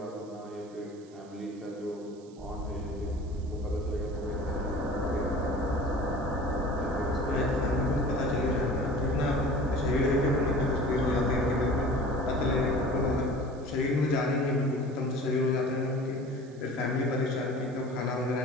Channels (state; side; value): noise; right; hiss, 28 dB below the sound